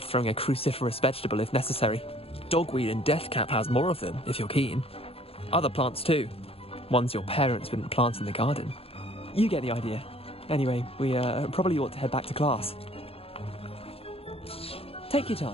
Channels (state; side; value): late; right; 0.28 ms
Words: throwing a cruciferous vegetable if necessary. Dogweed and deathcap has more of them, if you're keen. Other plants too. Ones your parents wouldn't plant in the garden. You get the idea. Anyway, we probably ought to head back to class. Take your